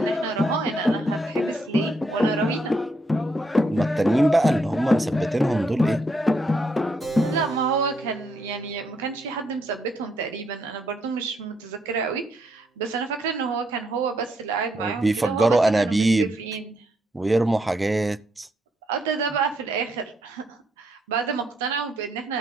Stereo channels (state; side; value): normal; both; correlation 0.75